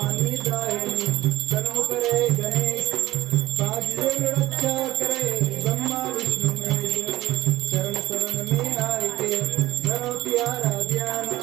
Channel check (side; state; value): left; quieter; 16.6 dB